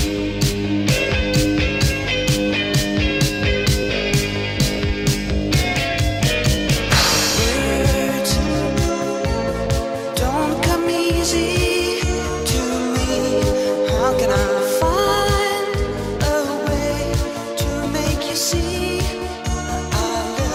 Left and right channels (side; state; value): both; identical; correlation 1.00